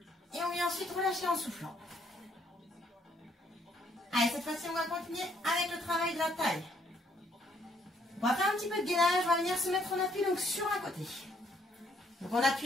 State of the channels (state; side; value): normal; both; correlation 0.68